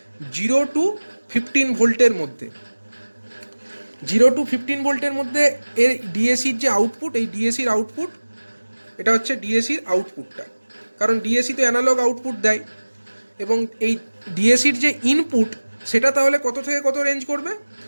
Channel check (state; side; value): inverted; both; correlation -1.00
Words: 0 to 15 ভোল্টের মধ্যে। 0 to 15 ভোল্টের মধ্যে এর ডিএসির যে আউটপুট, এই ডিএসির আউটপুট, এটা হচ্ছে ডিএসির আউটপুটটা, কারণ ডিএসি তো অ্যানালগ আউটপুট দেয়। এবং এই ডিএসির যে ইনপুট, সেটা তাহলে কত থেকে কত রেঞ্জ করবে?